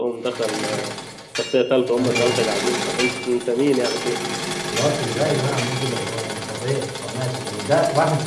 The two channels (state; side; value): identical; both; correlation 1.00